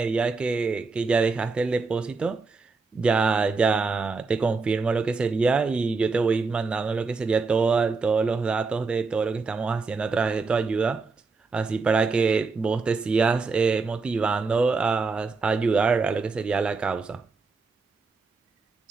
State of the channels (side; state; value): left; quieter; 4.3 dB